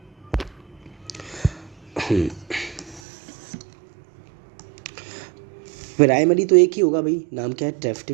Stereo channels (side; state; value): left; drops out; at 3.0 s